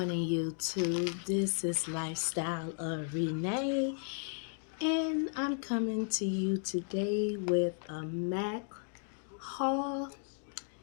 YouTube. This is Lifestyle of Renee, and I'm coming to you today with a MAC haul.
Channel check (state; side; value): silent; right; 55 dB below the other